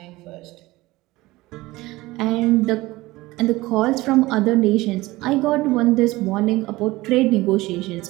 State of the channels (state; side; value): quieter; left; 19.5 dB